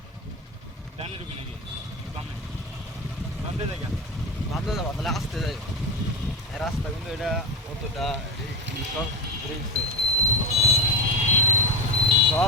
ডানে ঢুকি নাকি বামে বামে যাই কেন ভাবতে যাবো তাহলে আসতে যাই। রাস্তা কিন্তু এটা অতটা সব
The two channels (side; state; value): both; normal; correlation 0.16